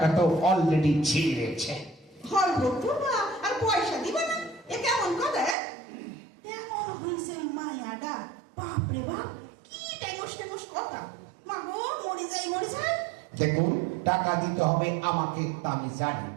তো অলরেডি ছিঁড়েছে। হলব করবা আর পয়সা দিবা না? এ কেমন কথা? এমন হইছে ওই মায়াডা, বাপরে বাপ, কি টেমস কথা। মা গো, মরে যাই মরে যাই। দেখুন, টাকা দিতে হবে আমাকে, তা আমি জানি,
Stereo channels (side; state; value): left; drops out; at 5.6 s